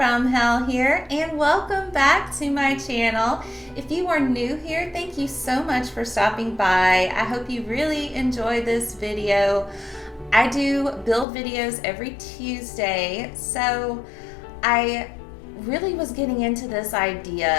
Hell here, and welcome back to my channel. If you are new here, thank you so much for stopping by. I hope you really enjoy this video. I do build videos every Tuesday, so I really was getting into this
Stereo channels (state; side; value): drops out; right; at 11.2 s